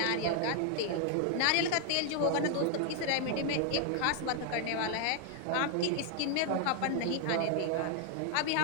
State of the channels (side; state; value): both; different; correlation 0.00